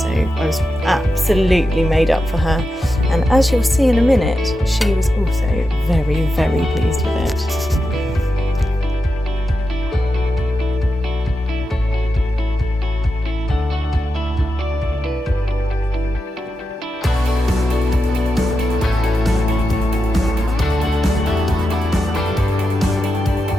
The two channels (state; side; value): normal; both; correlation 0.89